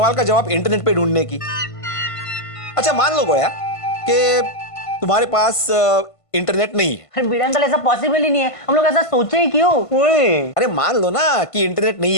का जवाब इंटरनेट पे ढूंढने की। अच्छा मान लो गोया कि तुम्हारे पास इंटरनेट नहीं है। अरे भिड़े अंकल, ऐसा पॉसिबल ही नहीं है, हम लोग ऐसा सोचे ही क्यों? अरे मान लो ना कि इंटरनेट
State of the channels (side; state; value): right; late; 1.5 ms